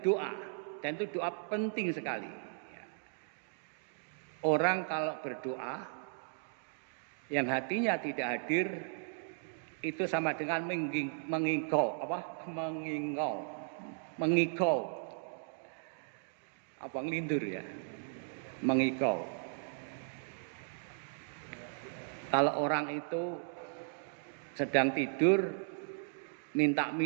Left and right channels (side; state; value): left; silent; digital silence